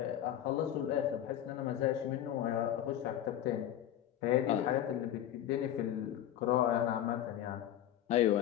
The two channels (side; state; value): right; quieter; 11.5 dB